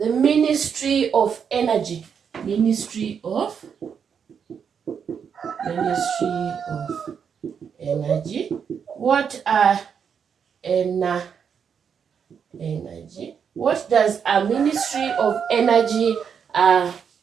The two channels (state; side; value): quieter; left; 7.1 dB